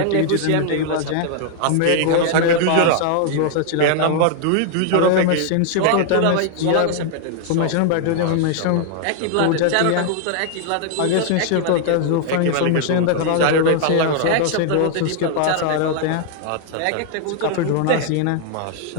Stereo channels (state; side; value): different; both; correlation 0.00